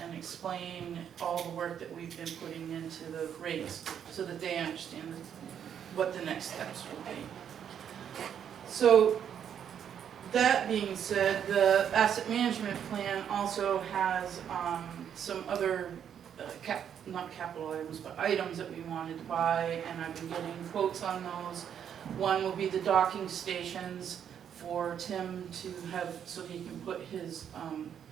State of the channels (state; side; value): quieter; left; 8.7 dB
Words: and explain all the work that we've been putting into the rates, so that they understand what the next steps will be. So, that being said, the asset management plan also has some other, not capital items, but items that we wanted to buy, and I've been getting quotes on those. One will be the docking stations for Tim to have, so he can put his